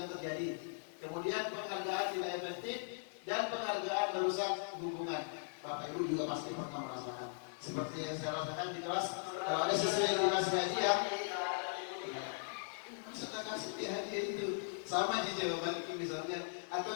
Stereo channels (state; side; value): silent; right; digital silence